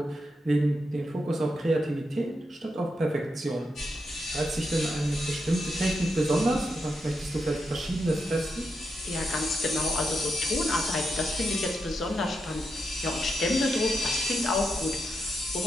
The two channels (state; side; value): normal; both; correlation 0.84